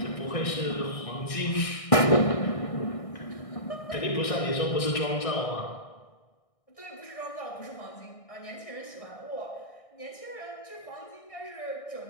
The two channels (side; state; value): right; late; 1.6 ms